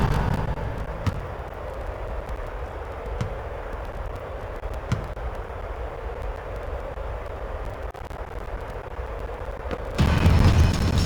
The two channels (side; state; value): both; identical; correlation 1.00